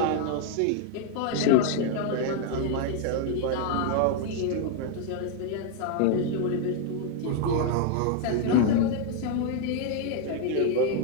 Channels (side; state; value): both; different; correlation 0.00